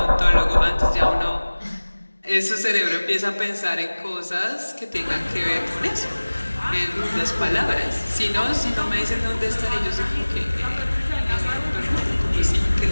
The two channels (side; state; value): both; inverted; correlation -1.00